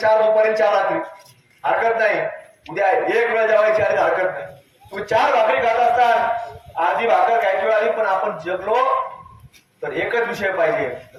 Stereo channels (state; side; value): identical; both; correlation 1.00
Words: दुपारी 4 रात्री हरकत नाही, उद्या 1 वेळ जेवायची आली हरकत नाही. तुम्ही 4 भाकरी खात असताना अर्धी भाकर खायची वेळ आली पण आपण जगलो तर एकच विषय पाहिजे,